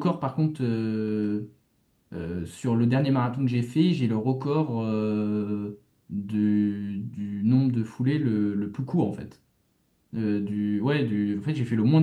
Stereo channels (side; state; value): both; identical; correlation 1.00